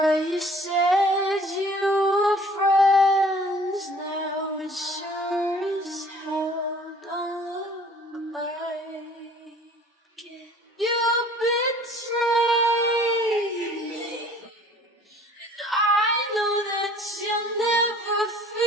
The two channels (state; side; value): normal; both; correlation 0.52